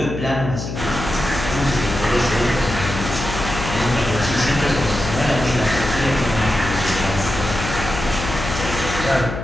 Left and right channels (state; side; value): noise; left; hum, 6 dB below the sound